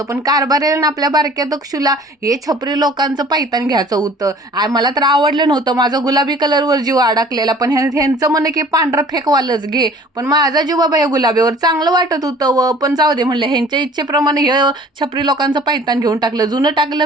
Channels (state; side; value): normal; both; correlation 0.49